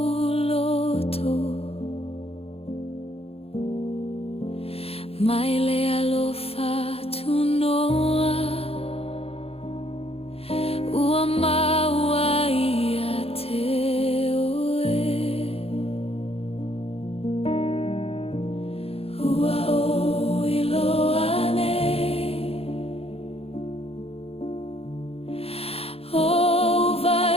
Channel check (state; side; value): late; right; 0.29 ms